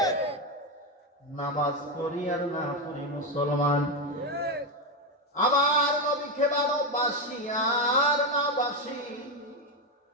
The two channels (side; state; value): both; normal; correlation 0.09